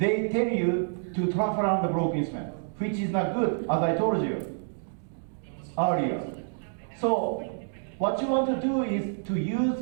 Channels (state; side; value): silent; left; digital silence